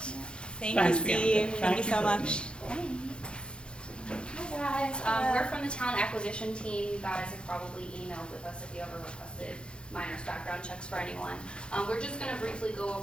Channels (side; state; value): right; late; 0.054 ms